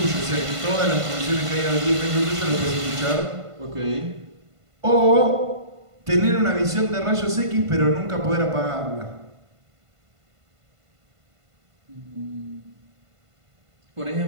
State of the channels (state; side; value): late; left; 1.5 ms